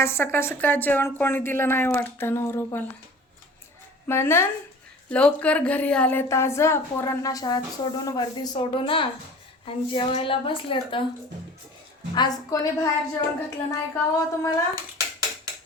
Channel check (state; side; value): normal; both; correlation 0.43